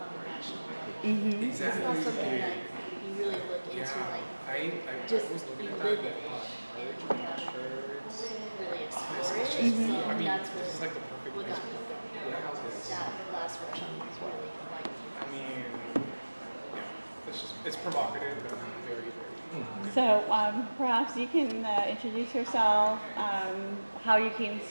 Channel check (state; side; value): inverted; both; correlation -1.00